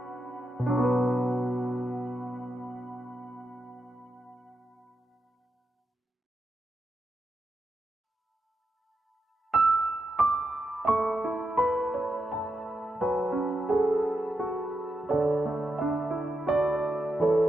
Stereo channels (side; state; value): both; normal; correlation 0.86